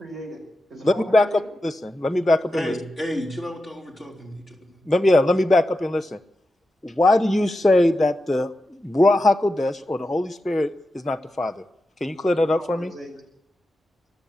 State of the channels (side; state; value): both; normal; correlation 0.90